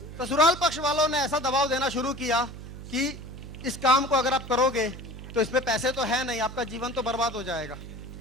ससुराल पक्ष वालों ने ऐसा दबाव देना शुरू किया कि इस काम को अगर आप करोगे तो इसमें पैसे तो है नहीं, आपका जीवन तो बर्बाद हो जाएगा।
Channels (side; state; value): right; noise; hum, 12 dB below the sound